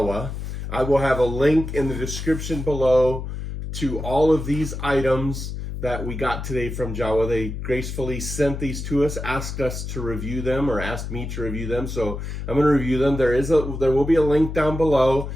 I will have a link in the description below to all of these items that we got today from Jowua. They gracefully sent these to us, asked us to review them, or asked me to review them. So I'm going to review them. There will be a link down below.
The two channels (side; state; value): left; noise; hum, 6 dB below the sound